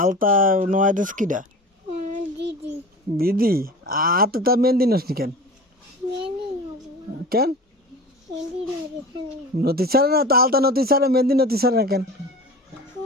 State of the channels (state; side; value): normal; both; correlation 0.35